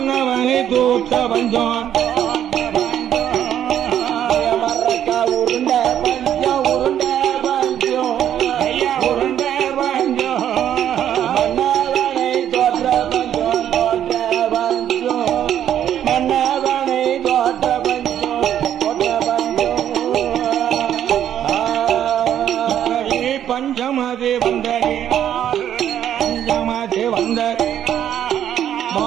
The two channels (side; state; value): left; quieter; 10.3 dB